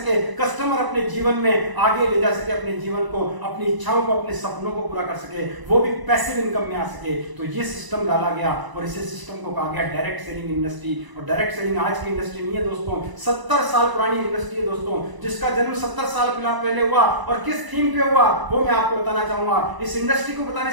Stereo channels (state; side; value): late; left; 1.0 ms